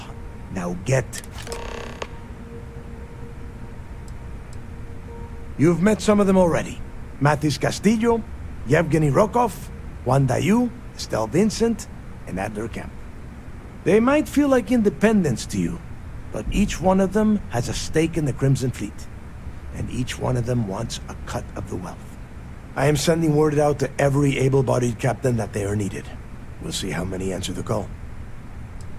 Now get... You've met some of them already. Matis Castillo, Yevgeny Rokov, Juan Dayu, Estelle Vincent, and Adler Kemp. They might feel like independents to you, but each one of them has a stake in the Crimson Fleet. And each one of them wants a cut of the wealth. I am sending word out to every able-bodied captain that they are needed. We'll see how many answer the call.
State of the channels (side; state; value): both; identical; correlation 1.00